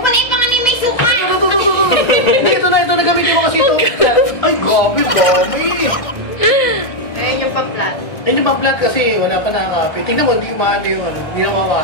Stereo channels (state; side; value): late; right; 1.6 ms